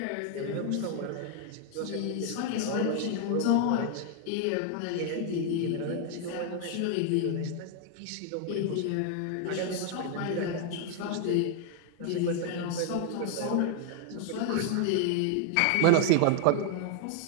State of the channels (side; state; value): both; different; correlation 0.00